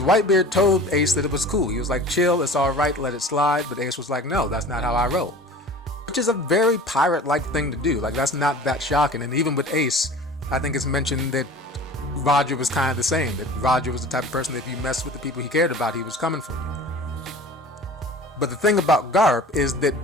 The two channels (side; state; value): both; normal; correlation 0.41